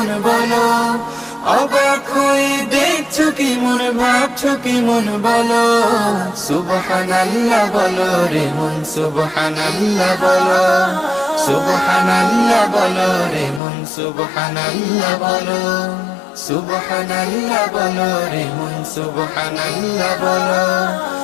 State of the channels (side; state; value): right; drops out; at 13.6 s